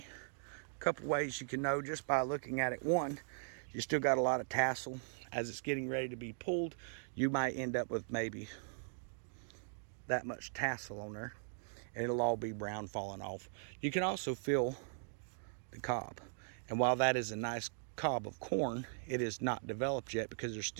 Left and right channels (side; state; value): left; silent; digital silence